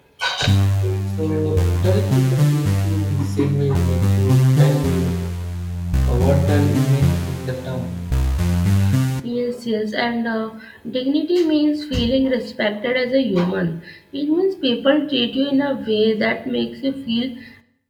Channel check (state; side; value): identical; both; correlation 1.00